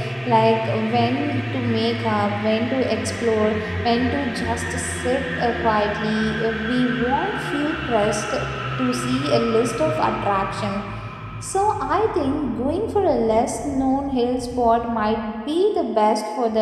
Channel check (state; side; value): identical; both; correlation 1.00